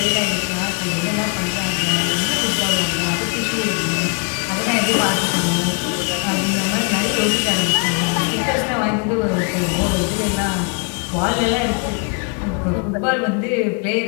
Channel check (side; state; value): right; quieter; 38.0 dB